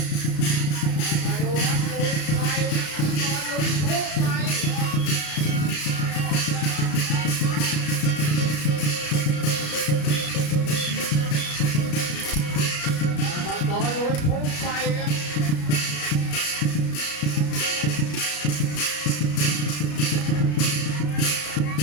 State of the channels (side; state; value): right; late; 33 ms